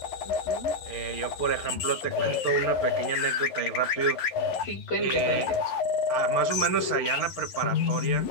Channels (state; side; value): late; right; 11 ms